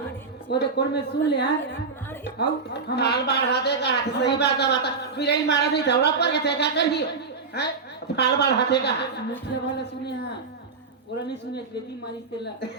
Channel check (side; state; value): left; quieter; 4.6 dB